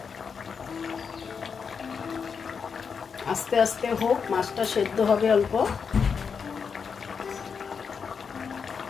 আস্তে আস্তে হোক, মাছটা সেদ্ধ হবে অল্প।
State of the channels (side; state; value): right; quieter; 6.1 dB